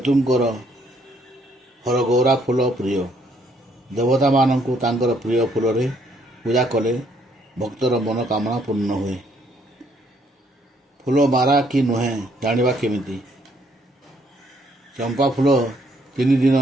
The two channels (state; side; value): normal; both; correlation 0.68